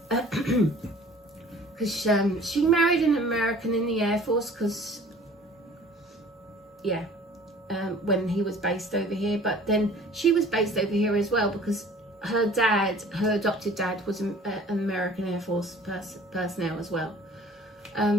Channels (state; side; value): normal; both; correlation 0.49